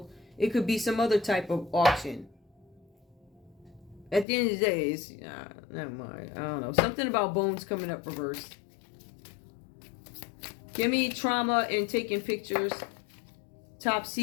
It could be some other type of auction. At the end of the day, it's, never mind. I don't know. Something about bones coming up reversed. Give me trauma and taking pictures. Top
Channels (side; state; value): right; drops out; at 4.2 s